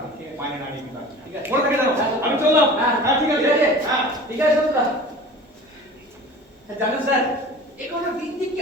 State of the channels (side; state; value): both; normal; correlation 0.40